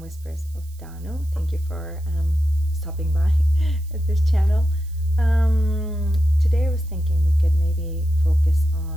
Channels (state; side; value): noise; right; hiss, 26 dB below the sound